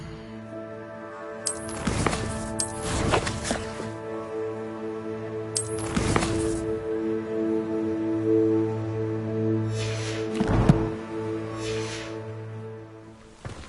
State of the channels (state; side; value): identical; both; correlation 1.00